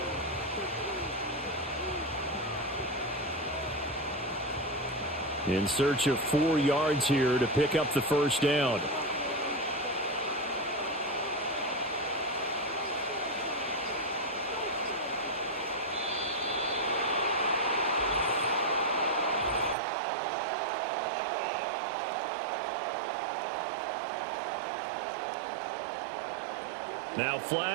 In search of 4 yards here to pick up the 1st down. Now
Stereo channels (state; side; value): drops out; left; at 19.8 s